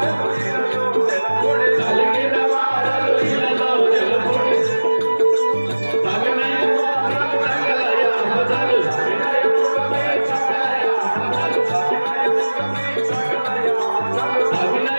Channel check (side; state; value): both; inverted; correlation -1.00